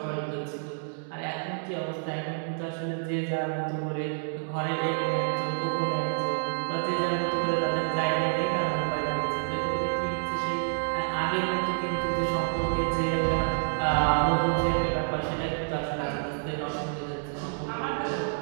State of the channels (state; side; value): silent; left; digital silence